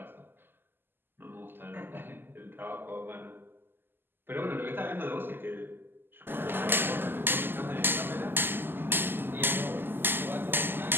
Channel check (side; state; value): left; late; 0.097 ms